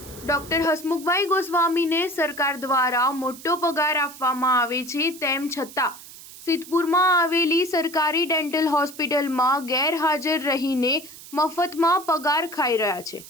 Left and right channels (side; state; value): right; noise; hiss, 17 dB below the sound